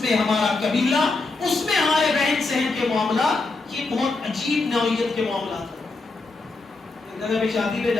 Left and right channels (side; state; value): right; quieter; 3.5 dB